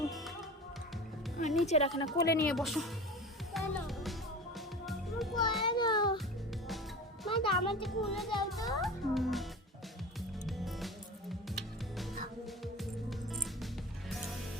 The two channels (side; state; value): both; normal; correlation 0.34